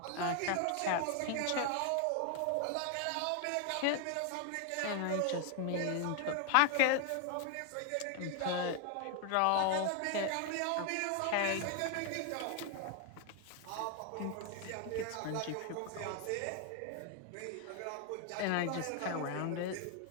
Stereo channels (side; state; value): both; different; correlation 0.00